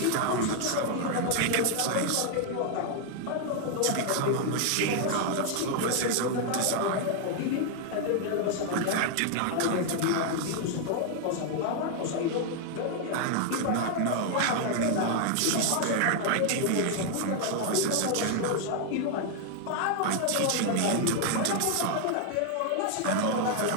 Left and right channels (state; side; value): different; both; correlation 0.00